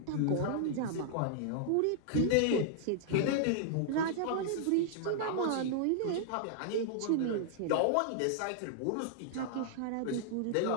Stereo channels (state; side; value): different; both; correlation -0.01